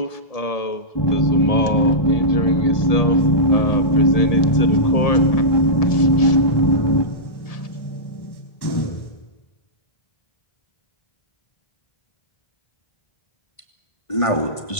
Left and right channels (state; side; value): late; right; 1.7 ms